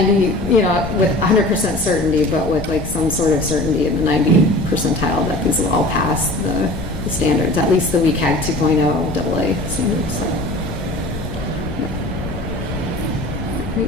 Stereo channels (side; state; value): left; noise; rumble, 8 dB below the sound